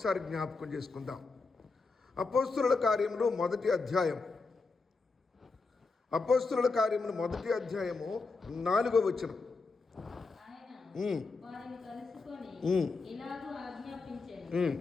జ్ఞాపకం చేసుకుందాం. అపోస్తుల కార్యములు 1వ అధ్యాయం, అపోస్తుల కార్యములు 1వ అధ్యాయము 4వ వచనం.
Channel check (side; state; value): right; quieter; 4.1 dB